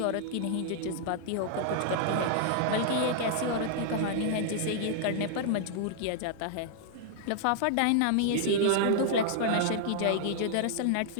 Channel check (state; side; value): different; both; correlation -0.01